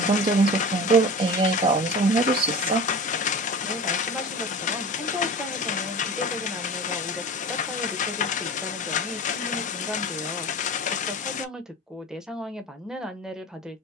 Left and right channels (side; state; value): both; normal; correlation 0.34